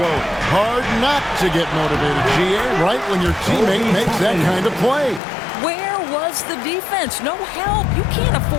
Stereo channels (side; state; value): right; drops out; at 5.2 s